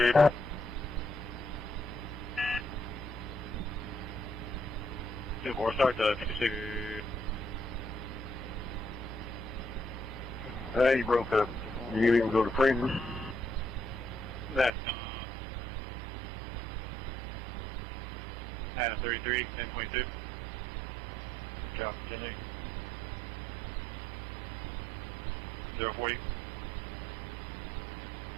Or start to 56. Hey, you broke up. You didn't even go to Francis? That's Adam 33, 1022. Copy, 10-8. 040.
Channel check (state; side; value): drops out; left; at 14.7 s